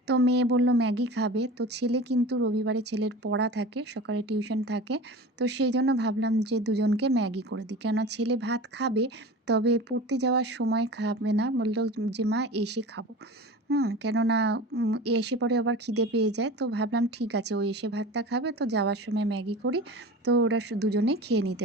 তো মেয়ে বলল ম্যাগি খাবে, তো ছেলে কিন্তু রবিবারে ছেলের পড়া থাকে, সকালে টিউশন থাকে। তো সেই জন্য ভাবলাম যে দুজনকে ম্যাগি করে দিই, কেননা ছেলে ভাত খাবে, তবে পড়তে যাওয়ার সময় খাবে না, বলল যে মা এসে খাবো। কেননা এসে পরে আবার খিদে পেয়ে যায়। তো ভাবলাম ঠিক আছে, ও এসে ভাতটা খাবে, তো যাওয়ার সময় ম্যাগি করি, তো ওরা দুজনেই খেয়ে নিতে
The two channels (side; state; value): both; normal; correlation 0.35